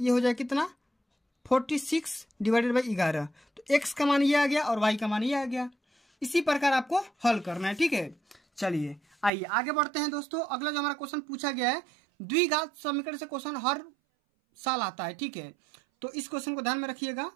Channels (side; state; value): left; drops out; at 9.3 s